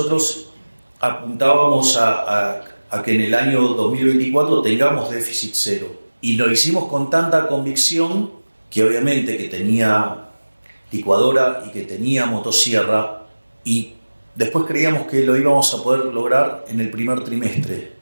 apuntábamos a que en el año 2024 tengamos déficit cero. Y lo hicimos con tanta convicción que obviamente que tenía licuadora y que tenía motosierra, y después creíamos que lo íbamos a poder lograr en el primer trimestre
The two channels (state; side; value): inverted; both; correlation -1.00